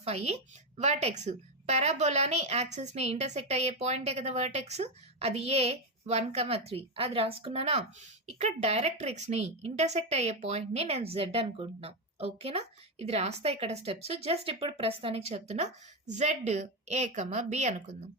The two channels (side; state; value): both; normal; correlation 0.09